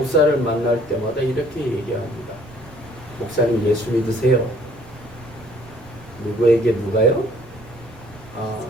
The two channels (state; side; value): noise; right; rumble, 21 dB below the sound